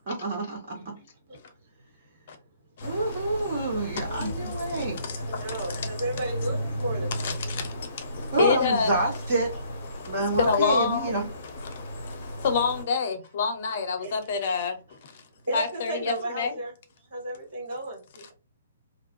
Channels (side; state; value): both; inverted; correlation -0.62